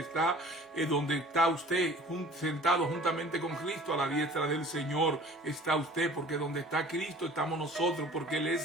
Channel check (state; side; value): normal; both; correlation 0.47